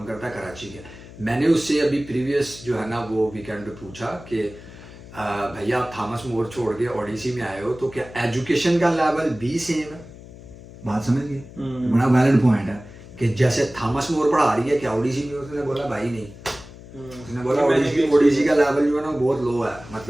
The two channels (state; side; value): noise; left; hum, 17 dB below the sound